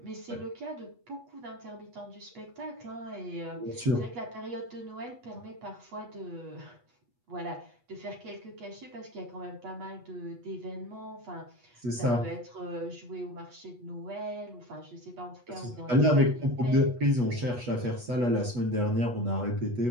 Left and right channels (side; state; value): left; late; 8.2 ms